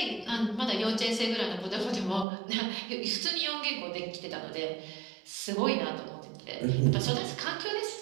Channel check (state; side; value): drops out; left; at 2.2 s